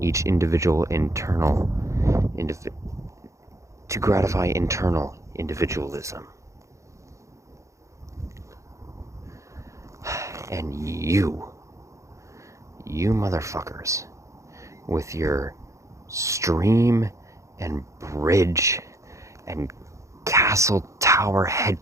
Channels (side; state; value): left; late; 0.15 ms